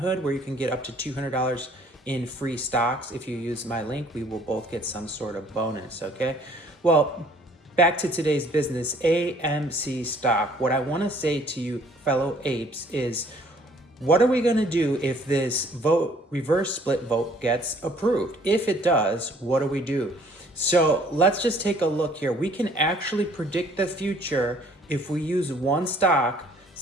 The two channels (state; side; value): normal; both; correlation 0.58